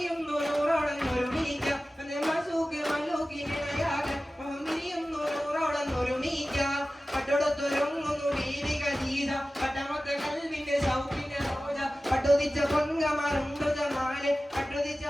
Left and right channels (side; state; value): both; normal; correlation 0.96